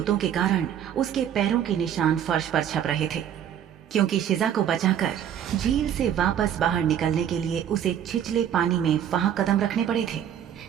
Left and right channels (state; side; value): quieter; left; 9.7 dB